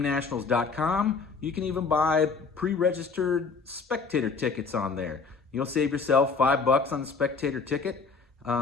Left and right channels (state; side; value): quieter; right; 4.8 dB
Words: You can even buy pre-registered spectator tickets on there. You'll save yourself $5 on the spectator ticket.